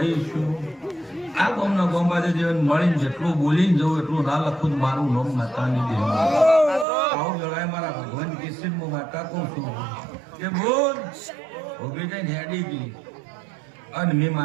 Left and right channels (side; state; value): left; drops out; at 6.9 s